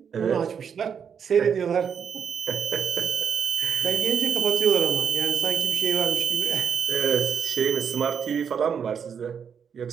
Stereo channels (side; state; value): left; quieter; 7.2 dB